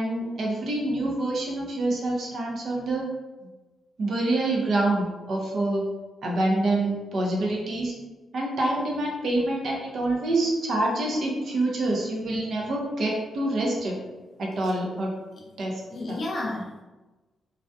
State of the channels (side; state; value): both; normal; correlation 0.84